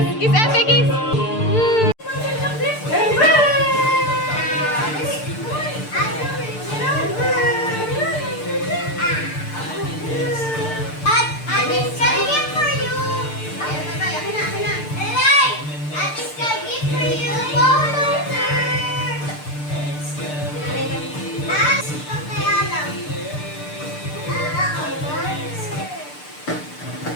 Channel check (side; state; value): right; late; 6.7 ms